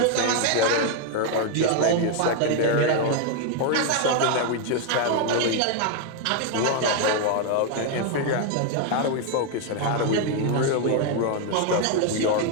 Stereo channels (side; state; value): both; different; correlation 0.01